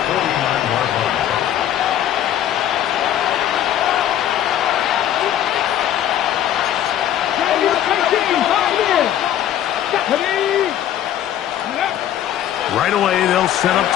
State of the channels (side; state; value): right; quieter; 11.2 dB